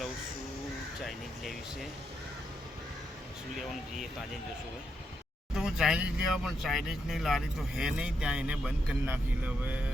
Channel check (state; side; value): normal; both; correlation 0.81